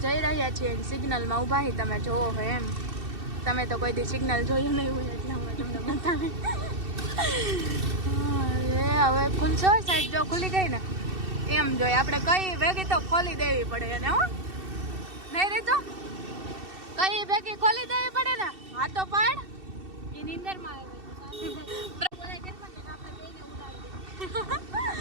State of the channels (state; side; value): late; left; 2.7 ms